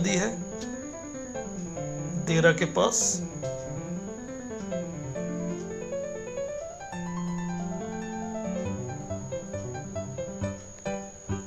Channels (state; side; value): identical; both; correlation 1.00